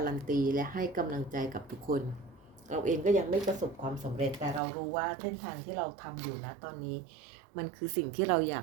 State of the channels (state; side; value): drops out; left; at 4.6 s